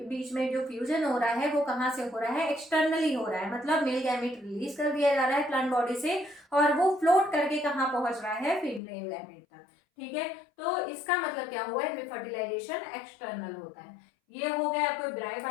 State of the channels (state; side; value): drops out; right; at 8.8 s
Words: बीच में जो फ्यूजन हो रहा है वो कहाँ से हो रहा है, एक्सटर्नली हो रहा है, मतलब मेल गैमेट रिलीज कर दिया जा रहा है प्लांट बॉडी से और वो फ्लोट करके कहाँ पहुंच रहा है, फीमेल गैमेट तक। ठीक है, तो इसका मतलब क्या हुआ, इसमें फर्टिलाइजेशन एक्सटर्नल होता है। ये हो गए आपको